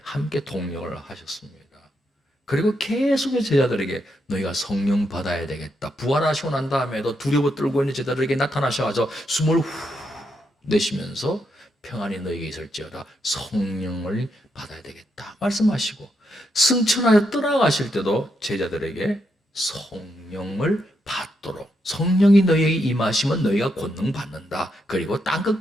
함께 동력을 하셨습니다. 그리고 계속 제자들에게 너희가 성령 받아야 되겠다. 부활하시고 난 다음에도 두려워 떨고 있는 제자들에게 나타나셔서 숨을 후 내쉬면서 평안이 너희에게 있을지어다. 성령을 받아야 되겠다 말씀하시고 승천하여 떠나가실 때도 제자들에게 성령을 받도록 성령이 너희에게 임하시면 너희가 권능 받는다. 그리고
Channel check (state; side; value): normal; both; correlation 0.81